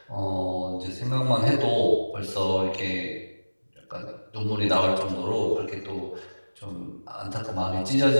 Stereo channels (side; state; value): both; inverted; correlation -1.00